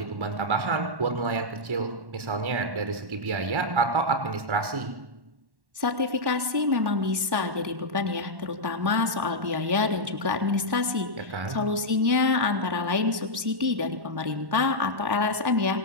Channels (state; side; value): late; left; 1.1 ms